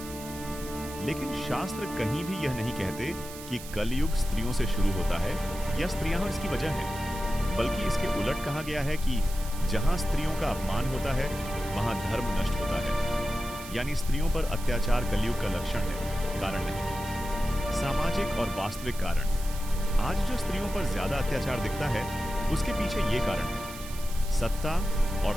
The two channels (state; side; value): noise; right; hiss, 14 dB below the sound